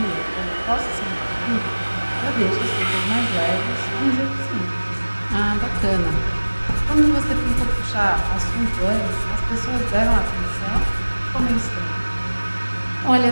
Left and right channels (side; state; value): both; inverted; correlation -1.00